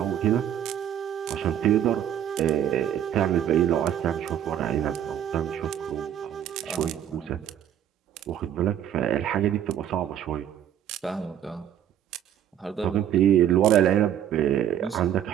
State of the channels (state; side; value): quieter; left; 10.3 dB